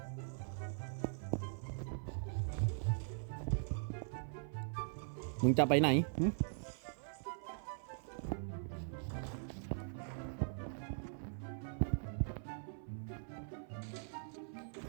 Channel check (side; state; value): left; silent; 50 dB below the other